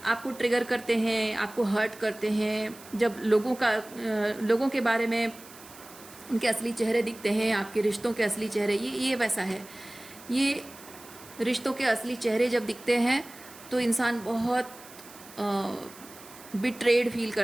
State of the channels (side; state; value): right; noise; hiss, 19 dB below the sound